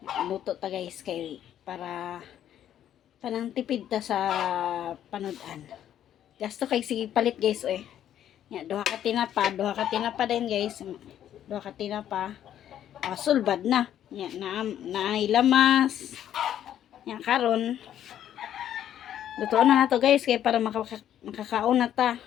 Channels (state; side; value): quieter; right; 10.7 dB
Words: Luto ta guys kay para panang tipid ta sa panudan. Gasto kay sige palit guys oy. Nya duha ka tinapa din guys. Duha ka tinapa. Sulbad na. Yan, nailamas. Yan, karon. Luto na to guys, kaya para makakaon na ta.